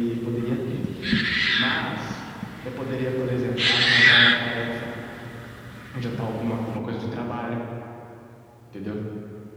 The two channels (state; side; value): identical; both; correlation 1.00